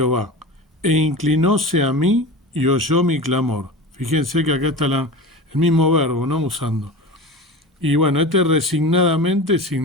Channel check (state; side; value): normal; both; correlation 0.30